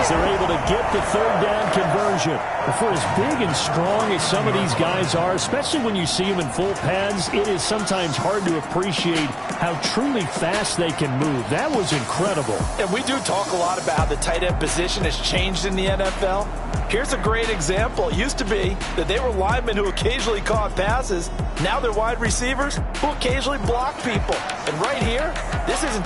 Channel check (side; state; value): both; identical; correlation 1.00